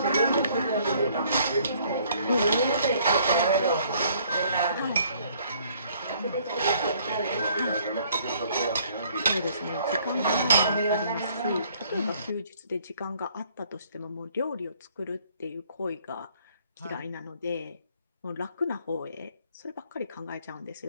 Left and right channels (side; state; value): both; inverted; correlation -0.61